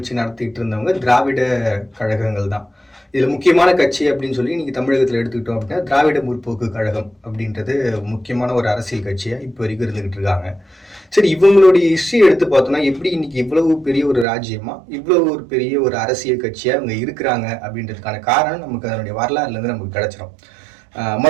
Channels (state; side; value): drops out; left; at 14.2 s